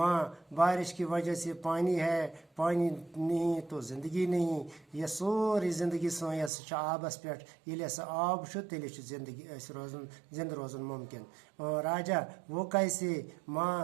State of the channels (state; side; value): drops out; left; at 6.5 s